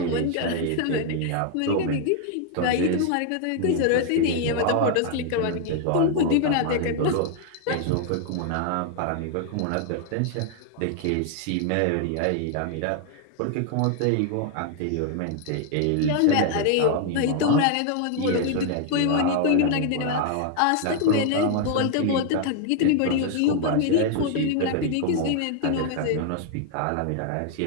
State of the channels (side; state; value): both; different; correlation 0.00